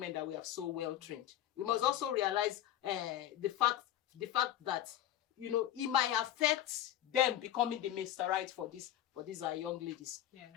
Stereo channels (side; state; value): right; quieter; 12.0 dB